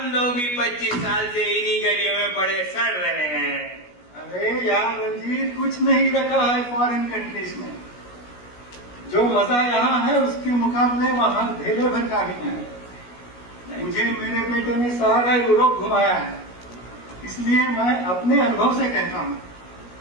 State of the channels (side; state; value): right; late; 17 ms